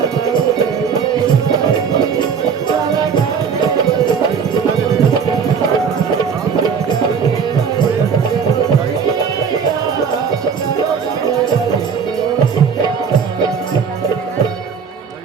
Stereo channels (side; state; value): left; quieter; 6.4 dB